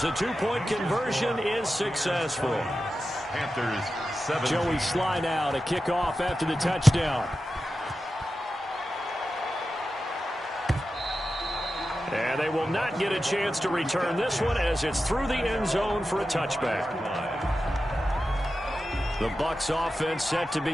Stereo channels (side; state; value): both; normal; correlation 0.92